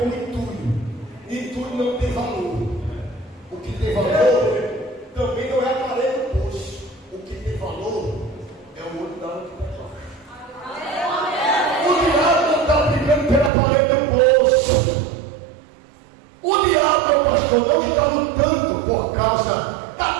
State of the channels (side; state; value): left; drops out; at 13.5 s